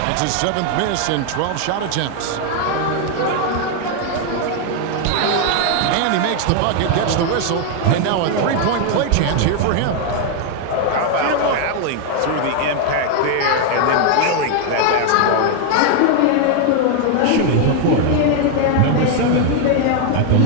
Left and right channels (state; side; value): different; both; correlation 0.00